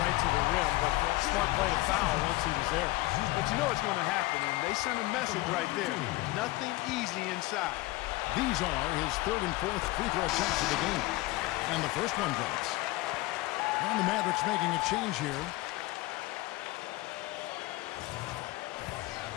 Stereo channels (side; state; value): right; quieter; 19.9 dB